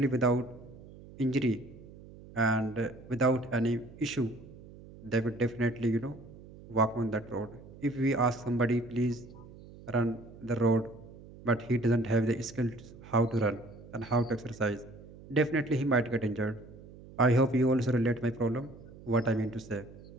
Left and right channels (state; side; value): noise; right; hum, 18 dB below the sound